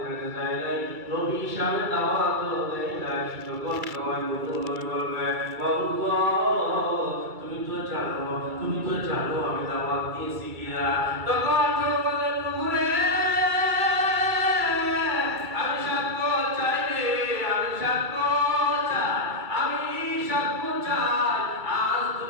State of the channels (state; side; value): late; left; 2.3 ms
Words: যায় নাই, নবী হিসাবে দাওয়াত দেয় নাই। তখন সময় নূহ নবী বলবে, আল্লাহ তুমি তো জানো আমি দাওয়াত দিয়েছি কিনা। তখন বললেন, নূহ রে আমি সাক্ষ্য চাই রে, আমি সাক্ষ্য চাই, আমি সাক্ষ্য চাই, আজ